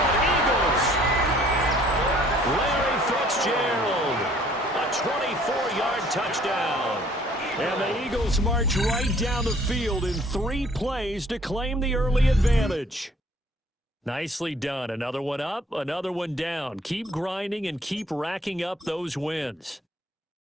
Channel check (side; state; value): both; normal; correlation 0.58